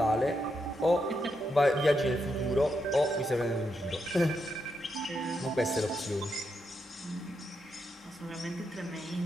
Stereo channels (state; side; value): normal; both; correlation 0.83